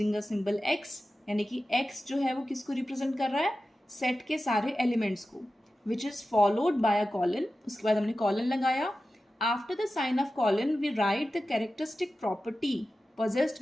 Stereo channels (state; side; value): normal; both; correlation 0.94